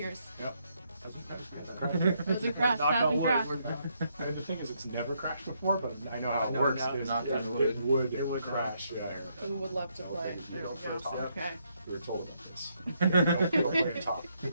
Those are crashed. Knock on Hasn't wood. crashed. And the thing is, it's never crashed before, but I know how I it know works. now. Is Not Yeah. through the it wood. would crash. Yeah, And would love to play. You There know, we go. for top. Okay. we were told about this. Don't play it top.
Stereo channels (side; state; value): both; inverted; correlation -0.75